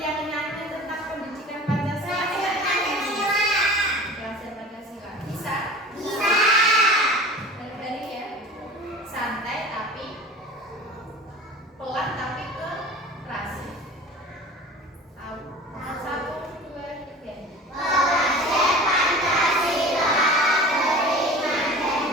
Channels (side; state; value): both; normal; correlation 0.39